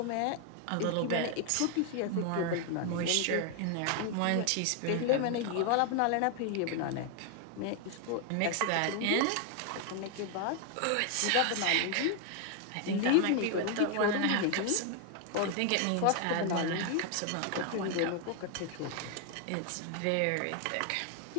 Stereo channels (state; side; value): different; both; correlation 0.00